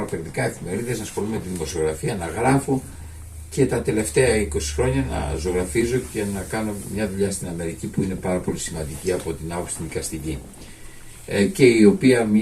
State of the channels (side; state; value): both; identical; correlation 1.00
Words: περιοδικά, εφημερίδες, να ασχολούμαι με τη δημοσιογραφία, να γράφω και τα τελευταία 20 χρόνια να ζωγραφίζω και να κάνω μια δουλειά στην Αμερική που είναι πάρα πολύ σημαντική από την άποψη την δικαστική. Και η οποία